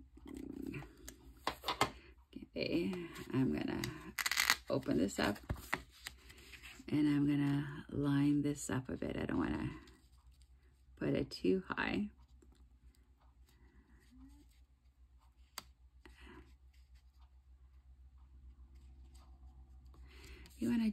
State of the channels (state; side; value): identical; both; correlation 1.00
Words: Okay, I'm gonna open this up and I'm gonna line this up a bit. I don't wanna put it too high. You want to